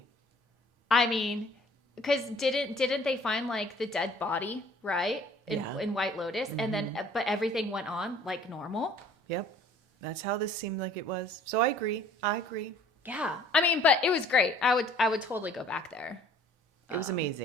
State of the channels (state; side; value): normal; both; correlation 0.54